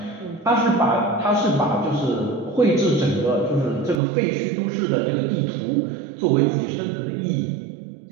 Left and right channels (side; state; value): left; drops out; at 4.0 s